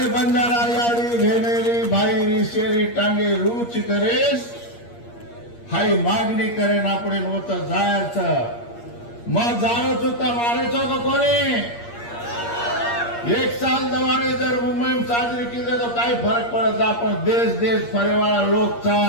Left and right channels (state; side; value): late; right; 8.5 ms